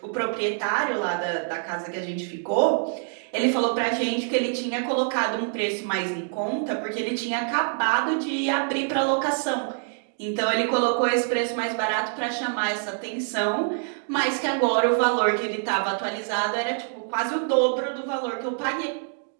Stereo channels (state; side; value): silent; left; 60 dB below the other